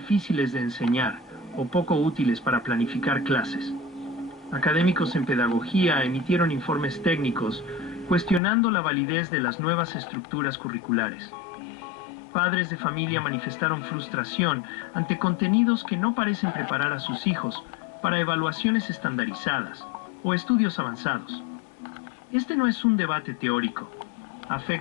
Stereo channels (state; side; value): drops out; right; at 8.4 s